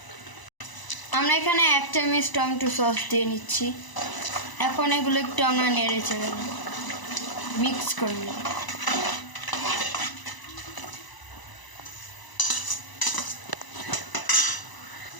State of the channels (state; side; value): late; right; 1.0 ms